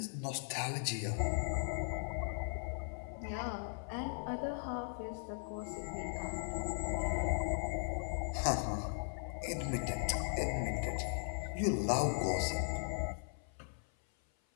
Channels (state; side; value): silent; right; 52 dB below the other